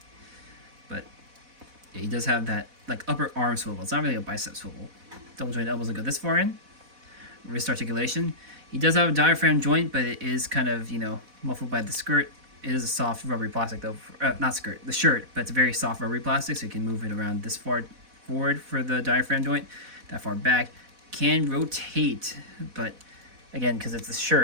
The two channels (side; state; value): left; late; 4.1 ms